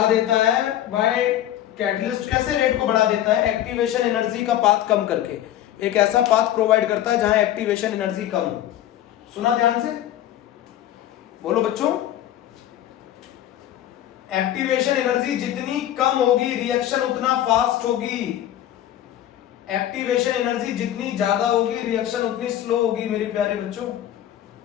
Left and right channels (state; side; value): quieter; right; 12.1 dB